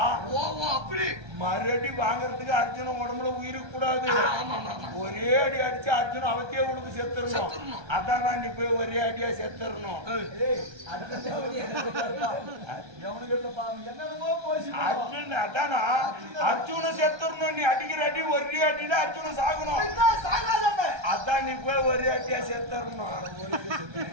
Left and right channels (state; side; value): late; left; 1.3 ms